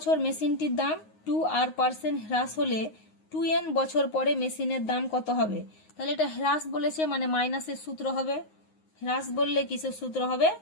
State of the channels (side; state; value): right; late; 9.5 ms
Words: মেশিনটির দাম 2r% হ্রাস হলে 2n বছর পরে মেশিনের দাম কত হবে। তাহলে এটা হ্রাস বলেছে মানে মাইনাসের সূত্র হবে, হ্রাস বললে কিসের সূত্র হবে,